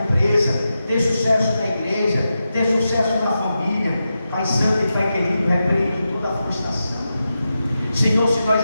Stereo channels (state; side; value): inverted; both; correlation -0.90